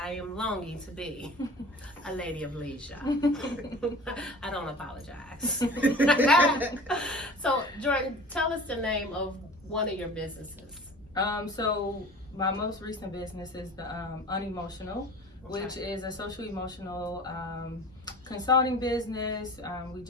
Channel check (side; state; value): both; normal; correlation 0.41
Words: am longing to be a lady of leisure. I don't apologize. So, Jordyn, tell us the name of one of your businesses. So my most recent business is the Unemotional, which is a social emotional consulting business. We